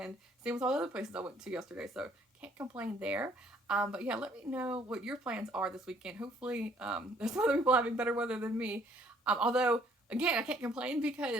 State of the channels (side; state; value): both; normal; correlation 0.62